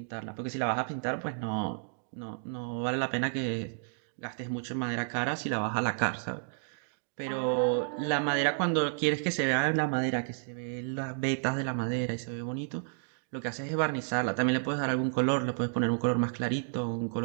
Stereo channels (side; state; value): left; silent; digital silence